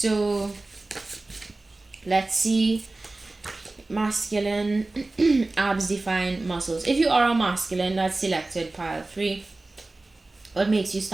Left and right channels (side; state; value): left; quieter; 3.1 dB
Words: let's see. Masculine, abs define muscles. If you are a masculine, that's selected pile 3. What makes you